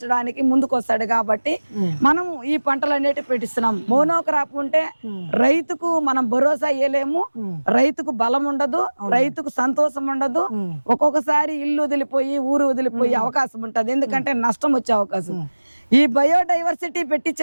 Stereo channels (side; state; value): both; inverted; correlation -1.00